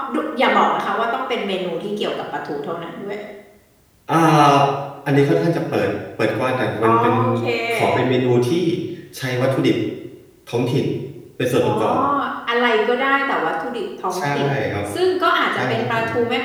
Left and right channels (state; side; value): identical; both; correlation 1.00